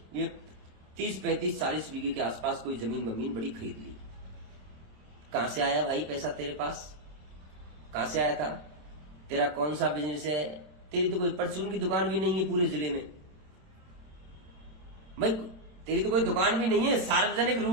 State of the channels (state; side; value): late; left; 27 ms